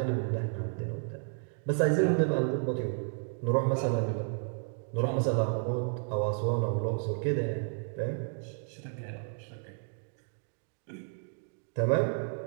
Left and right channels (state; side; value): silent; left; 56 dB below the other